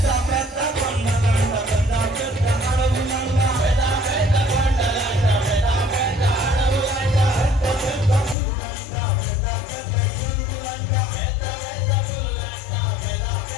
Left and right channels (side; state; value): right; drops out; at 8.3 s